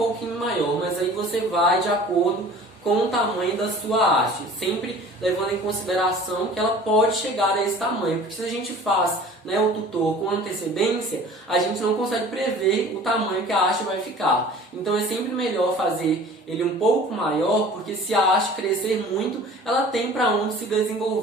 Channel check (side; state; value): both; normal; correlation 0.45